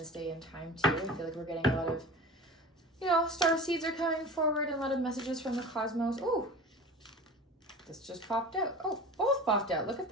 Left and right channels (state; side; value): normal; both; correlation 0.35